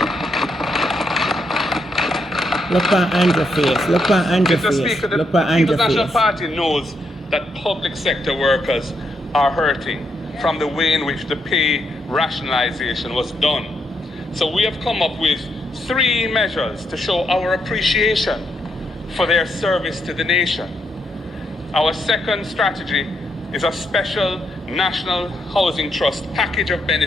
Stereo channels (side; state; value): both; normal; correlation 0.79